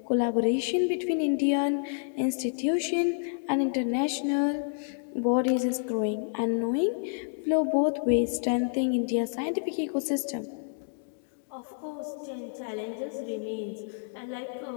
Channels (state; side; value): silent; right; digital silence